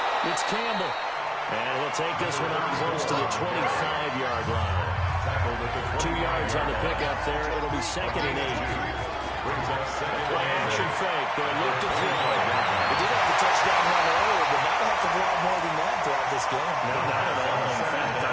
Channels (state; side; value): identical; both; correlation 1.00